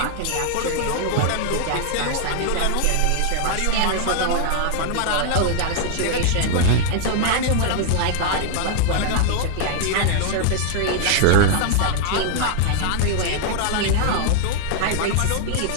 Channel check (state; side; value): different; both; correlation 0.00